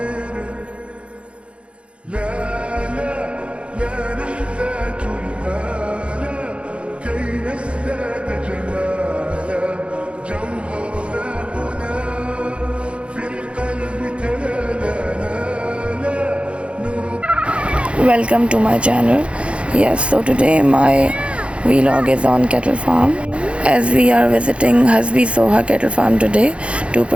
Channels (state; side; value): late; left; 0.060 ms